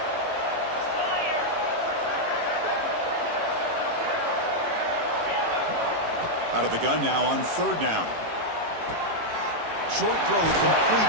Out of the gun now on 3rd down. Short throw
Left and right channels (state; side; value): late; left; 18 ms